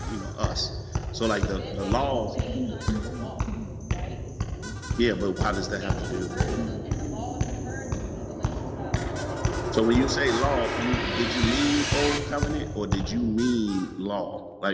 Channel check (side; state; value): both; identical; correlation 1.00